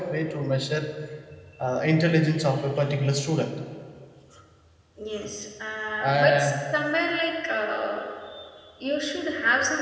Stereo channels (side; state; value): both; identical; correlation 1.00